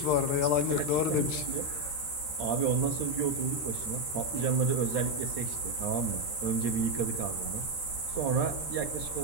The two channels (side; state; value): right; late; 13 ms